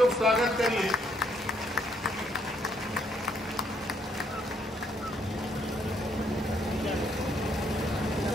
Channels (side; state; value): both; normal; correlation 0.70